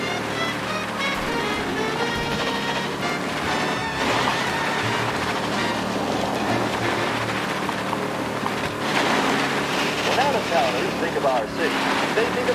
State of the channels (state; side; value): identical; both; correlation 1.00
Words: When out-of-towners think of our city, they think